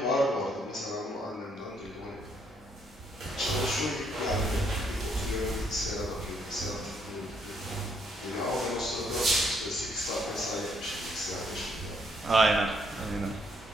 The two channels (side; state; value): both; normal; correlation 0.71